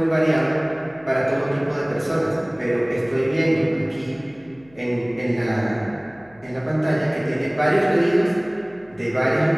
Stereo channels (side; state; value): left; noise; hum, 29 dB below the sound